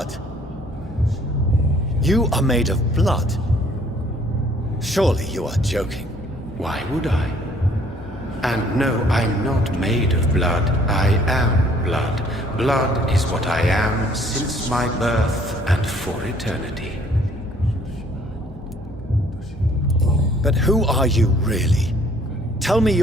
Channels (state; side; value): normal; both; correlation 0.60